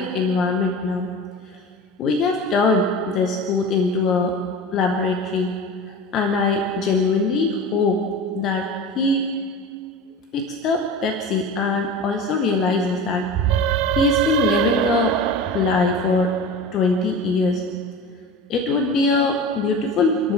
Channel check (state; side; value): normal; both; correlation 0.33